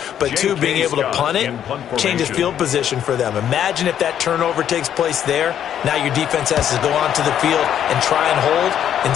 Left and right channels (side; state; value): right; quieter; 9.8 dB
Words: But 2, being able to punt it changes field position for them. Imagine if that turnover takes place there. Now your defense has to go onto the field and try and hold.